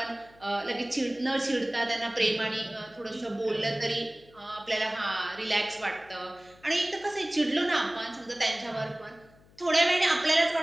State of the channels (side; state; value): left; noise; hum, 27 dB below the sound